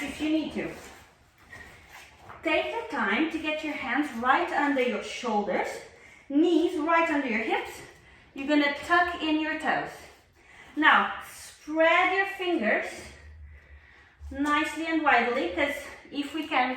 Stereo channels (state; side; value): identical; both; correlation 1.00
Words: if you need to. Take the time to get your hands right under your shoulders, knees right under your hips. You're going to tuck in your toes. Now, spread your fingers nicely and widely, because if we can, we're